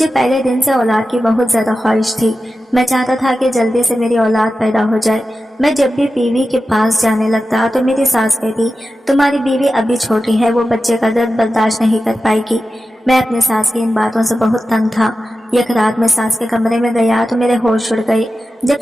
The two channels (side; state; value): both; normal; correlation 0.93